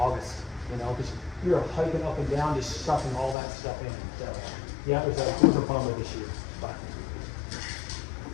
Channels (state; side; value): drops out; right; at 3.4 s